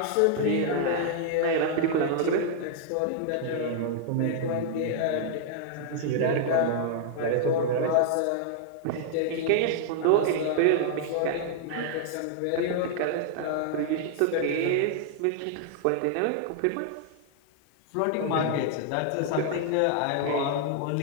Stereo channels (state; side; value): different; both; correlation 0.00